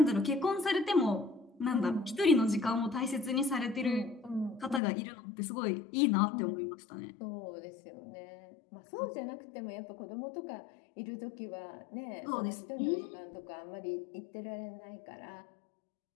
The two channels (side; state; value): right; drops out; at 4.8 s